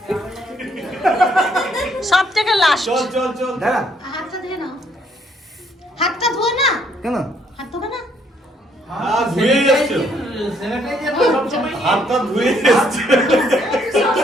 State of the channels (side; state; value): both; normal; correlation 0.68